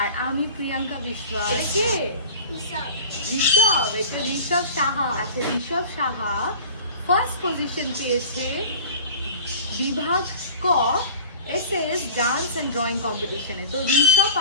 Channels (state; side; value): inverted; both; correlation -0.37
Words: আর আমি প্রিয়াঙ্কা বিশ্বাস। কে? ঋষভ। এটা ঋষভ সাহা। আচ্ছা, ঋষভ সাহা ফার্স্ট পজিশন পেয়েছে বিভাগ ক এসএস ডান্স অ্যান্ড ড্রয়িং কম্পিটিশনে। তো ঋষভ